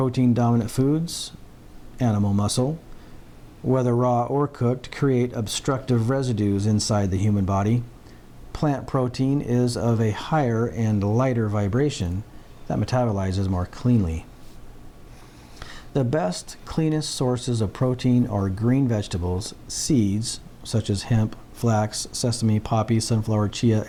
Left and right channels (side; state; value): both; identical; correlation 1.00